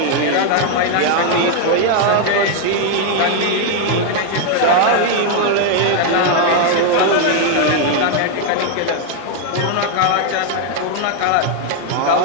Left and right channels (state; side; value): different; both; correlation 0.00